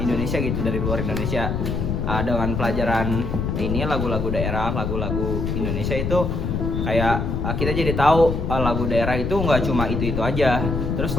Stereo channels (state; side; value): noise; left; rumble, 1 dB below the sound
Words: gitu, dari luar Indonesia. Dengan pelajaran ini lagu-lagu daerah, lagu-lagu Indonesia itu kayak kita jadi tahu lagu daerah itu nggak cuma itu aja. Terus